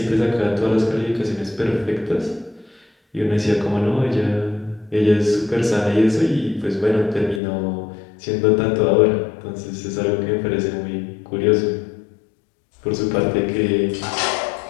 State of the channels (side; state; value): right; drops out; at 7.4 s